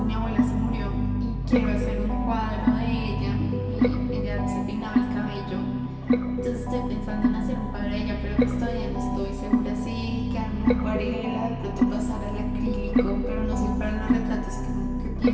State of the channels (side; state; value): both; identical; correlation 1.00